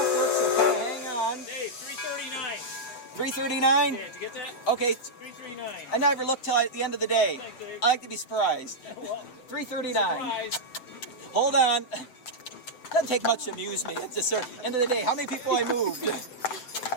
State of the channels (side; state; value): right; late; 8.2 ms